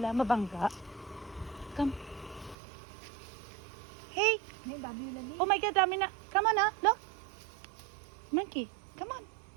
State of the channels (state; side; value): drops out; left; at 2.6 s